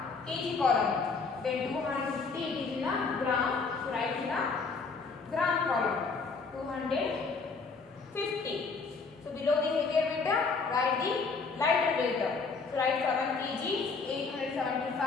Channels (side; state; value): right; quieter; 4.6 dB